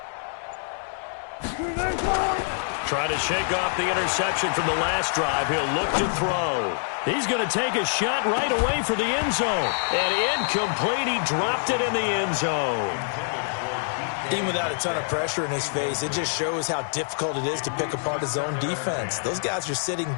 Trying to shake off the interception from the last drive. He'll look to throw. He's going to take a shot right away for the end zone. And incomplete. He dropped it in the end zone. Even without a ton of pressure in his face, it just shows how difficult it is to pick apart his own defense. Those guys are sitting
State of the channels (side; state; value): right; silent; digital silence